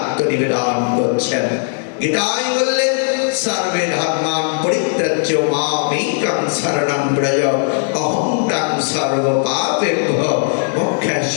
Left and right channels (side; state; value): right; silent; 64 dB below the other